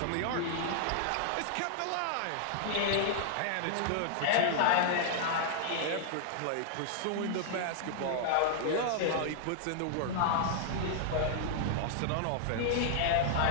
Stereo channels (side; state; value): both; different; correlation -0.01